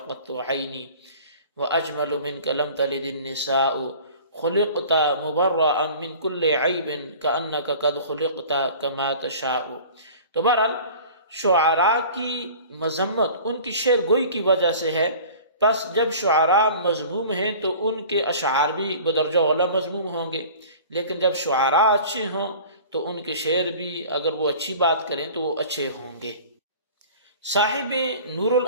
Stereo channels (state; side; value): inverted; both; correlation -0.43